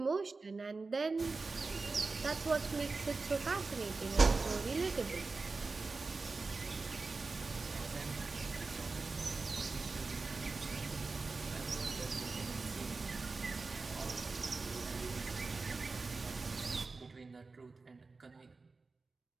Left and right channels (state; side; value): quieter; left; 3.9 dB